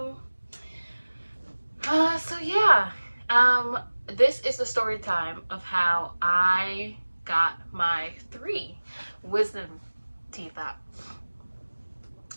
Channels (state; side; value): inverted; both; correlation -1.00